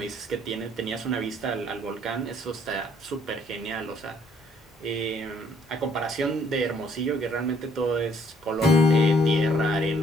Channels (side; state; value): both; normal; correlation 0.64